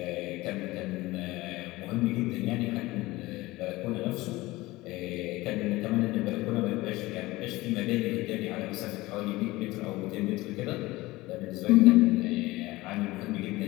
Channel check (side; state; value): right; quieter; 19.7 dB